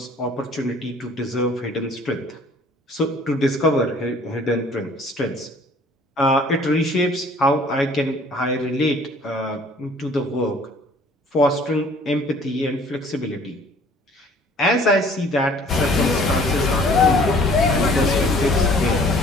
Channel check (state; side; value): normal; both; correlation 0.54